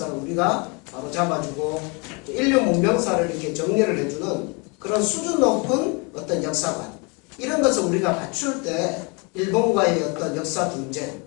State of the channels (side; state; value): right; quieter; 30.9 dB